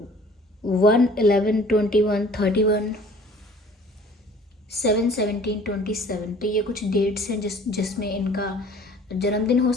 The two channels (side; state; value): both; normal; correlation 0.50